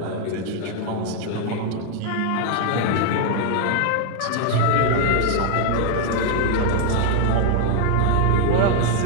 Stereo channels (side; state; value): both; different; correlation 0.00